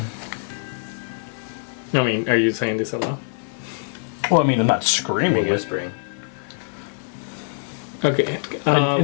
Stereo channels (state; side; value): silent; right; digital silence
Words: I mean, are you saying this aloud? Well, I mean, I'm not We're screaming it. whispering. Okay.